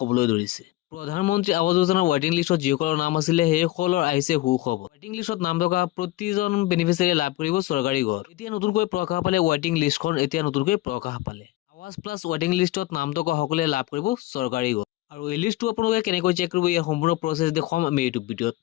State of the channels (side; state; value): right; quieter; 17.4 dB